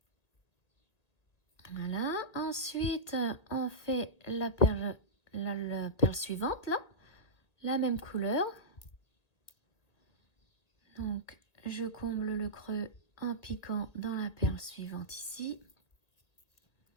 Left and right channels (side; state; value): right; late; 1.8 ms